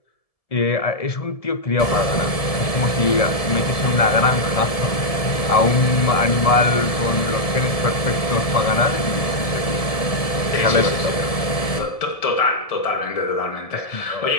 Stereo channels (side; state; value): right; late; 1.7 ms